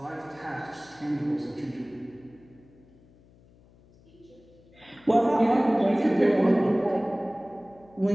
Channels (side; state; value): left; noise; hum, 28 dB below the sound